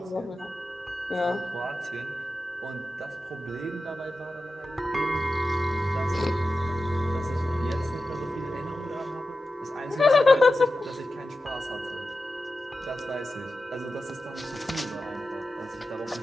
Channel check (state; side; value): normal; both; correlation 0.93